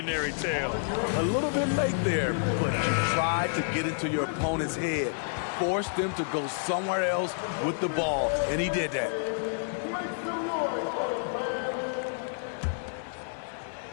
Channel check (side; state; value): right; silent; digital silence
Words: tale. A little bit late there, but you tried to get into your opponent's head. Forced them to go somewhere else with the ball, and he did that.